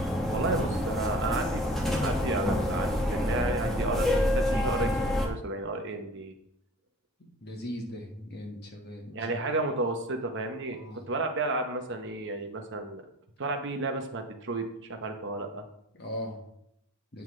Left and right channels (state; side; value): normal; both; correlation 0.44